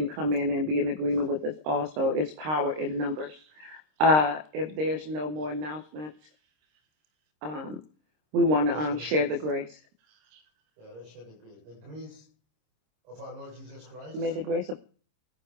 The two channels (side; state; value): left; late; 26 ms